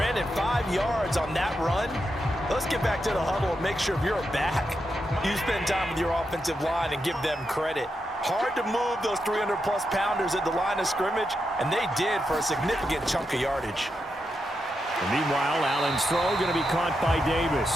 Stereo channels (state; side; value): normal; both; correlation 0.85